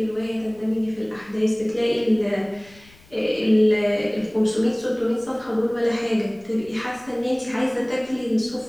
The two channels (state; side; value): noise; left; rumble, 26 dB below the sound